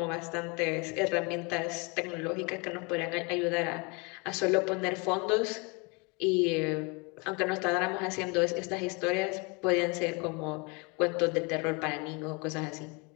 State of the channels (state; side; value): quieter; right; 30.1 dB